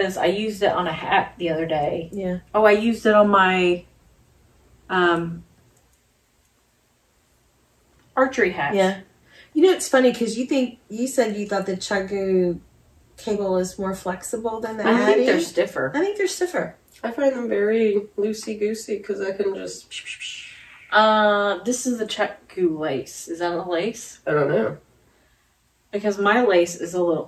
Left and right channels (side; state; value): both; identical; correlation 1.00